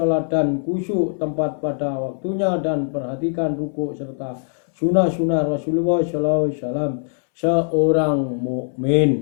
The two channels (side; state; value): right; silent; 65 dB below the other